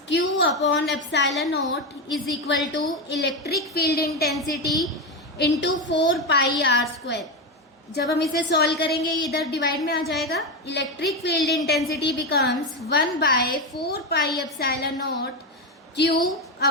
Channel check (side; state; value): both; normal; correlation 0.13